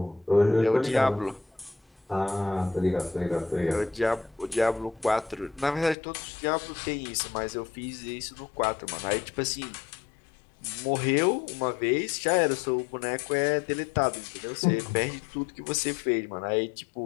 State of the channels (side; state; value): right; drops out; at 6.0 s